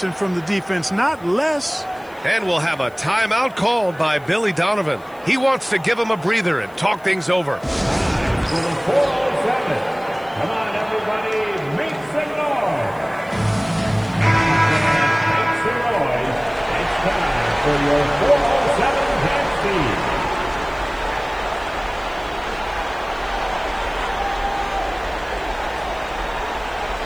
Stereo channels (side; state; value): left; noise; hiss, 28 dB below the sound